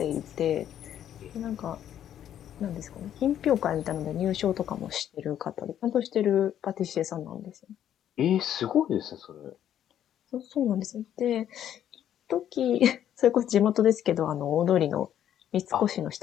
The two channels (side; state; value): right; quieter; 10.5 dB